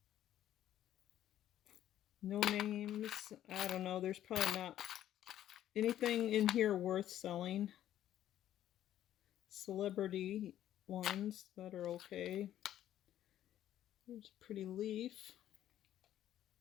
No names. I don't know. There's probably not anything in here worth selling. Celebrity ones that are okay. There's a pretty leaf.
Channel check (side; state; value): right; quieter; 11.9 dB